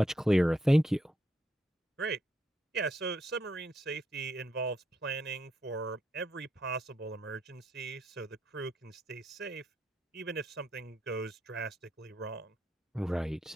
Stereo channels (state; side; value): normal; both; correlation 0.79